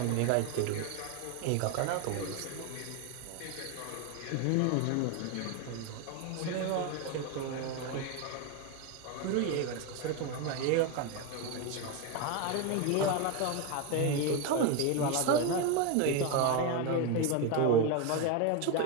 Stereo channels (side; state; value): both; different; correlation 0.02